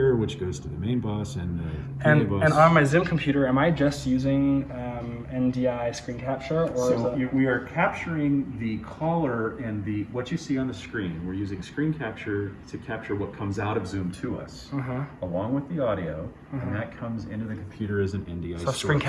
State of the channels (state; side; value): identical; both; correlation 1.00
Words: which goes to the main bus and the PA bus. And on my Zoom computer, am I just using NDI screen capture? Or we are capturing the caller and what you see on the screen. We're using screen capture to capture what comes out of Zoom to us, along with the audio, and that comes into the computer as an NDI source. Screen